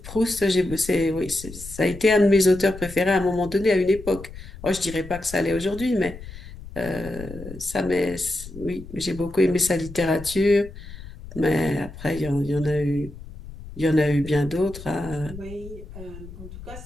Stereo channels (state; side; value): noise; left; rumble, 14 dB below the sound